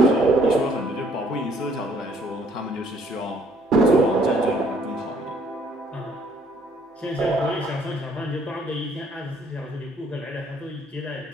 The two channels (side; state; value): both; normal; correlation 0.63